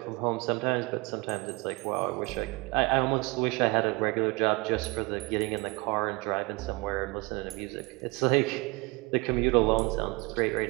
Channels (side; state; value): left; quieter; 26.3 dB